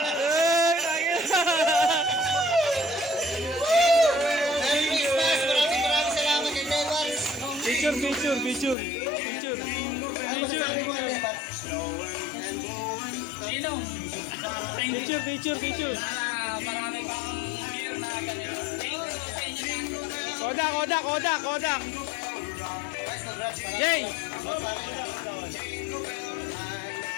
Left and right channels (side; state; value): right; drops out; at 8.8 s